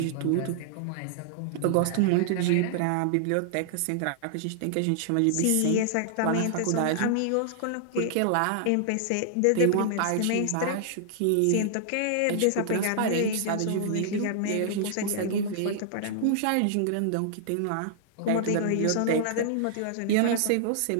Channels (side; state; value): both; different; correlation -0.01